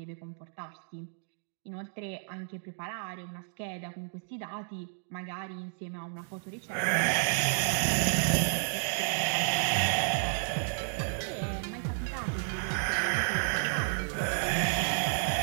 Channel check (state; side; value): silent; left; digital silence